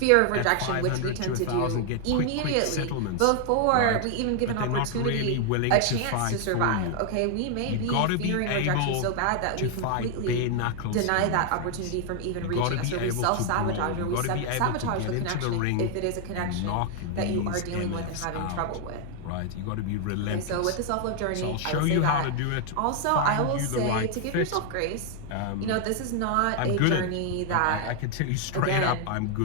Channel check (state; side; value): different; both; correlation 0.00